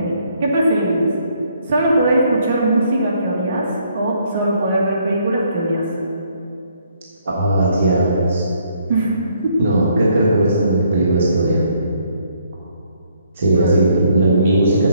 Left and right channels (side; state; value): both; inverted; correlation -0.68